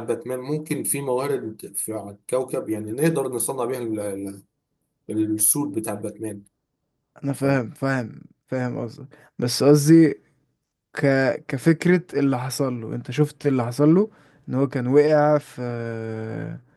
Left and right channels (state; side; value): identical; both; correlation 1.00